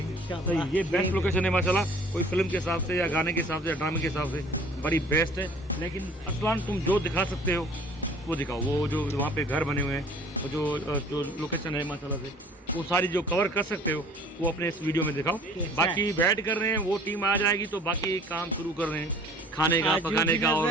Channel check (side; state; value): both; normal; correlation 0.51